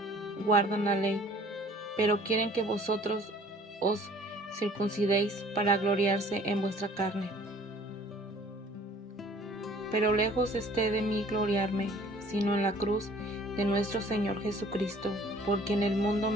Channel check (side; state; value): both; normal; correlation 0.53